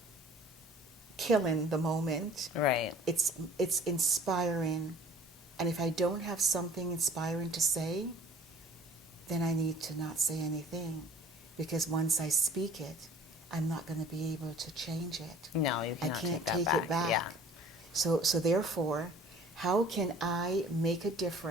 killing the moment. Right. It's inspiring. And if I don't have something inspiring to say, then I need to not say anything, because once I speak it, I'm not going to be able to change it. No, you cannot. I can't take it back. Yeah. So therefore, how can I make a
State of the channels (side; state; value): both; normal; correlation 0.49